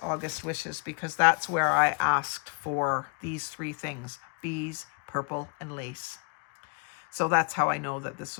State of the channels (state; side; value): quieter; right; 36.5 dB